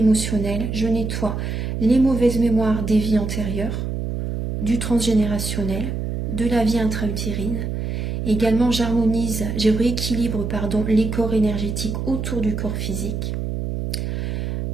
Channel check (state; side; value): noise; right; hum, 3 dB below the sound